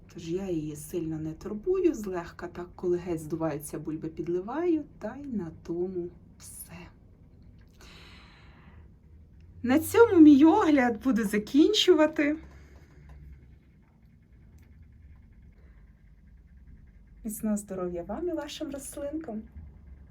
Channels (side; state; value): both; identical; correlation 1.00